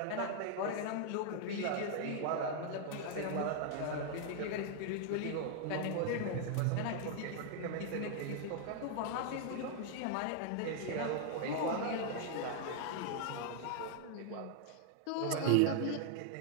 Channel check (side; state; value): both; different; correlation 0.00